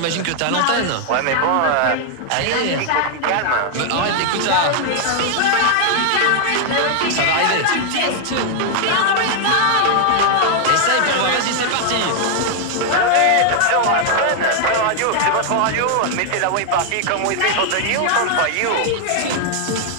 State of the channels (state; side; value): different; both; correlation 0.00